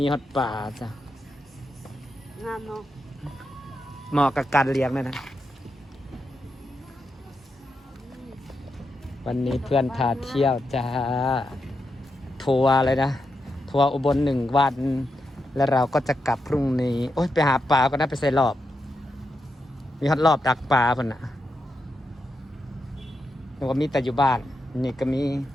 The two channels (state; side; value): normal; both; correlation 0.85